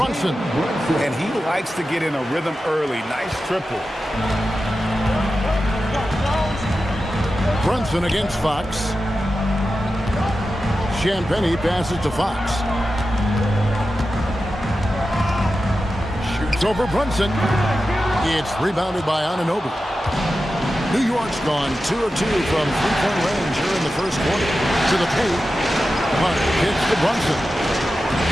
And he likes to get in a rhythm early. Nice triple. Brunson against Fox. Champagnie passes to Fox. Shoots over Brunson. It's rebounded by Anunoby. New York's gone 2 of 2 from three-point range here in the first quarter. To the paint. Hart hits to Brunson.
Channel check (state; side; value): normal; both; correlation 0.92